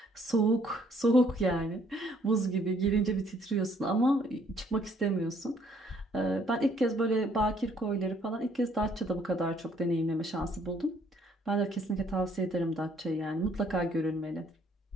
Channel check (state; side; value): normal; both; correlation 0.64